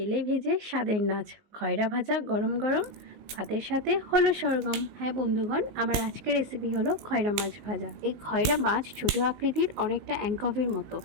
ভেজে স্বাদের নাচ, খয়রা ভাজা গরম গরম ভাতের সাথে হলো সরগম। হ্যাঁ বন্ধুগণ, আমার আজকের রেসিপি হলো খয়রা মাছ ভাজা। এই খয়রা মাছ ছোট আকৃতির, অনেকটা অ্যাঙ্কভের মতো।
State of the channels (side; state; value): left; late; 19 ms